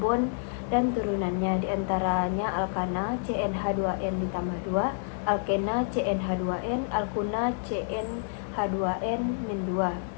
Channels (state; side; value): silent; right; digital silence